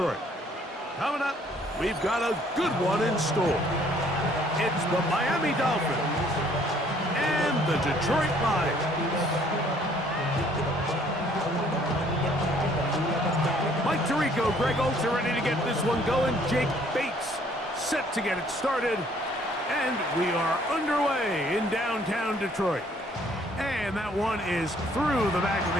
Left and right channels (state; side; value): normal; both; correlation 0.61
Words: Coming up, we've got a good one in store. It's the Miami Dolphins and the Detroit Lions. Mike Tirico, Greg Olsen ready to get this one going. Jake Bates set to get it started. And we are underway in downtown Detroit. And that one is through the back of